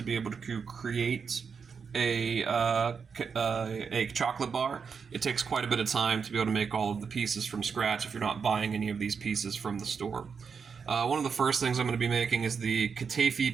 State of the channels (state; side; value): quieter; left; 6.0 dB